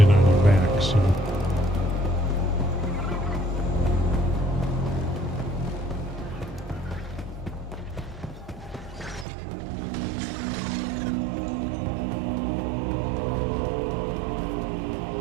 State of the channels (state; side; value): drops out; left; at 9.2 s